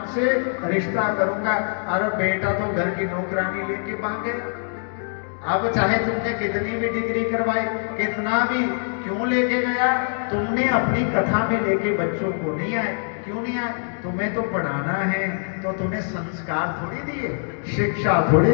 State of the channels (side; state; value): right; silent; 63 dB below the other